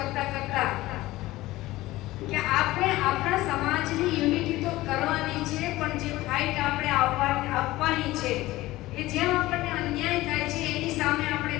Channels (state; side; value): quieter; right; 17.8 dB